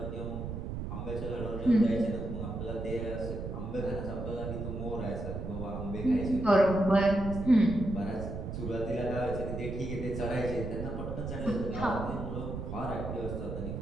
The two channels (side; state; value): right; noise; rumble, 6 dB below the sound